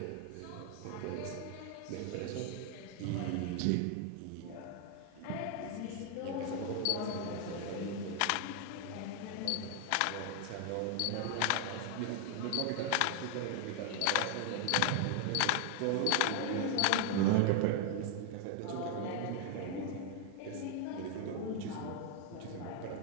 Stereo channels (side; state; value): both; different; correlation 0.00